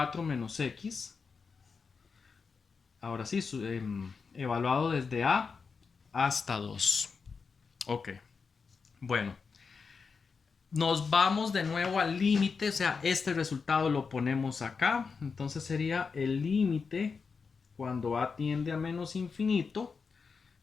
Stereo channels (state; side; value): quieter; right; 5.2 dB